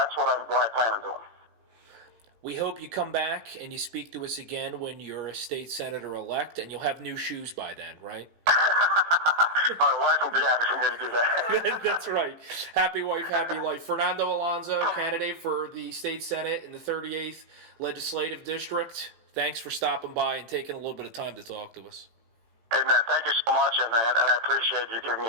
what I plan on doing. We hope you come back and you speak to us again when you're a state senator-elect, and you'll have new shoes by then, right? My wife will be happy for me to do that. That's right. Happy wife, happy life. Fernando Alonso, candidate for the state senate in the 38th legislative district. Thanks for stopping by and taking a little bit of time to talk to us. Hey, man, thank you so much, and I appreciate you giving me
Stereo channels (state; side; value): late; left; 18 ms